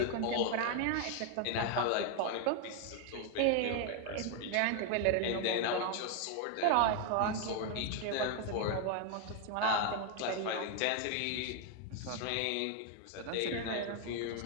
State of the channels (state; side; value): different; both; correlation 0.01